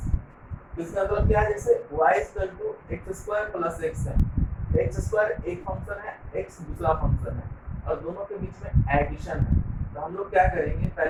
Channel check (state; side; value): identical; both; correlation 1.00